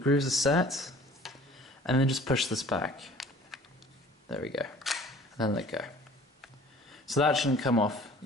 are set, and then just push this back, there we go, and then let go. So that shouldn't come off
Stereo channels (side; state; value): both; normal; correlation 0.49